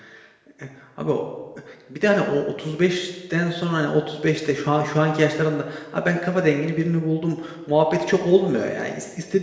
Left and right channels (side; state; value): both; identical; correlation 1.00